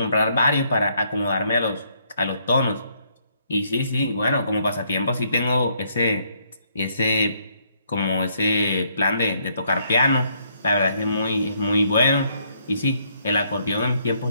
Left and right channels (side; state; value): both; inverted; correlation -0.71